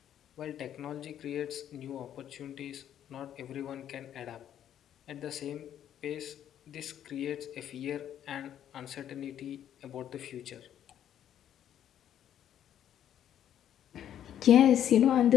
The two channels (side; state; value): right; quieter; 10.4 dB